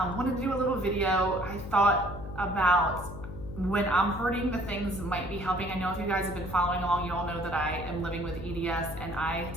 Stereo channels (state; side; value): noise; left; hum, 10 dB below the sound